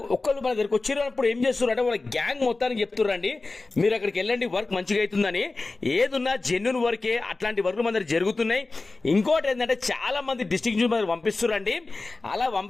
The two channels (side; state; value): right; quieter; 3.5 dB